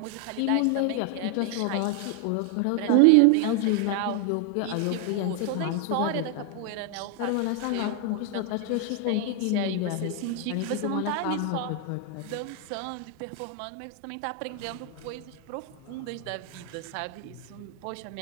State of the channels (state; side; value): different; both; correlation 0.00